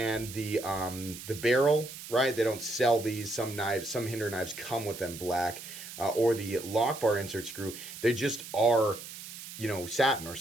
the barrel, right? They don't sell these. Some knives, some Hinder knives come with them black, or the lock bar insert screw. They just are, you know, satin or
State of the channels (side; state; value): right; noise; hiss, 12 dB below the sound